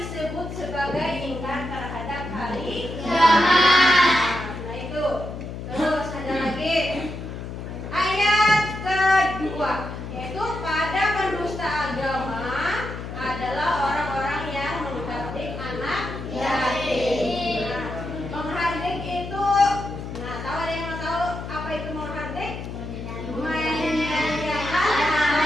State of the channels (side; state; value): left; noise; hum, 8 dB below the sound